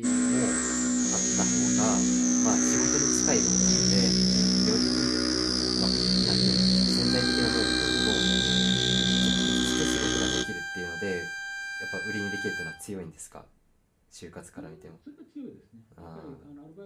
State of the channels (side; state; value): both; identical; correlation 1.00